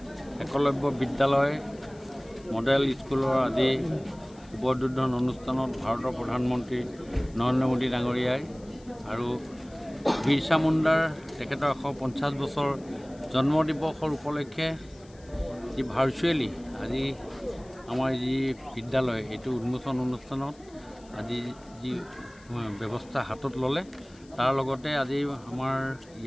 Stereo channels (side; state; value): left; noise; hiss, 27 dB below the sound